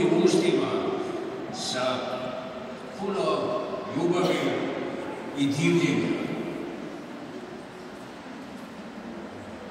ustima, sa puno ljubavi i divljenja.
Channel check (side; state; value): both; identical; correlation 1.00